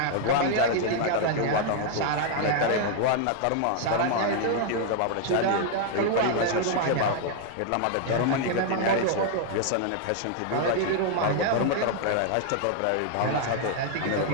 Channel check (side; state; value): both; different; correlation 0.00